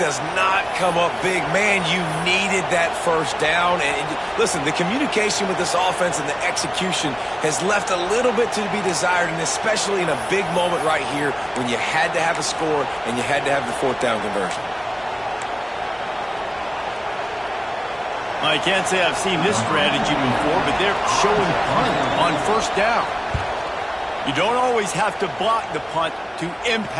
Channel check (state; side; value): identical; both; correlation 1.00